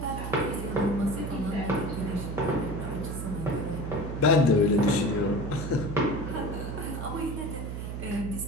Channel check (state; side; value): noise; right; hum, 5 dB below the sound